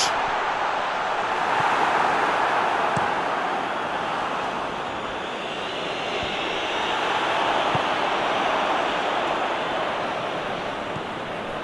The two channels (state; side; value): identical; both; correlation 1.00